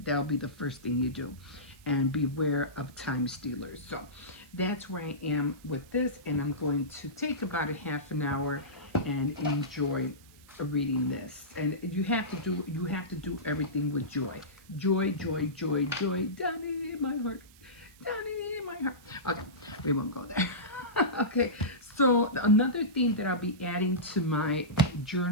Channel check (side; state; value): right; noise; hiss, 25 dB below the sound